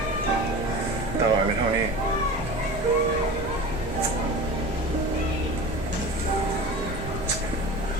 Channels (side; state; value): both; normal; correlation 0.33